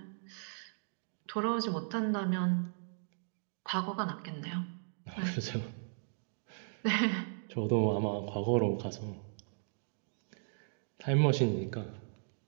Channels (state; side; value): silent; left; digital silence